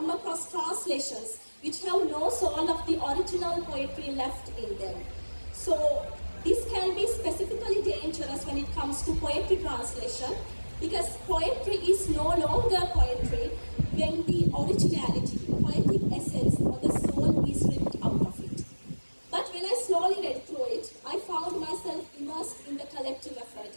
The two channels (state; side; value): inverted; both; correlation -1.00